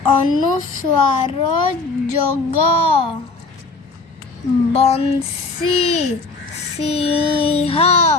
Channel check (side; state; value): right; quieter; 3.8 dB